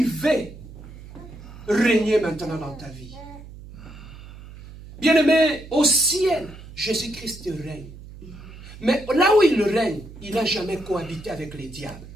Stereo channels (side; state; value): right; noise; hum, 16 dB below the sound